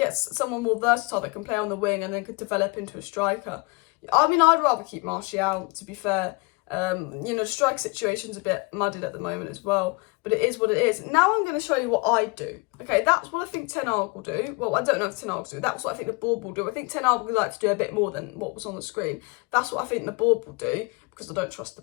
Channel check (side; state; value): right; quieter; 28.6 dB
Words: someone more versatile that can play on the wing and then could develop into a striker. I mean, I'd rather keep Martial, to be fair. You know, the strike situation's a bit muddied at the moment as well, but it is what it is. Now I'm going to show you what I do. Okay, that's what I think Ten Hag will do. Well, I don't know if Ten Hag will do. That's what I think the board will do. I think Ten Hag would like to do a bit more than what was on the screen. That's what I think the board will do, because I don't trust the